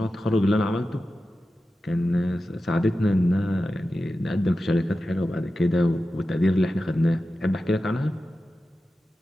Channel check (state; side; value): normal; both; correlation 0.93